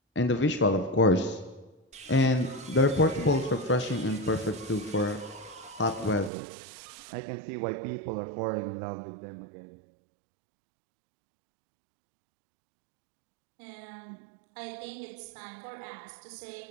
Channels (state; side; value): drops out; left; at 6.3 s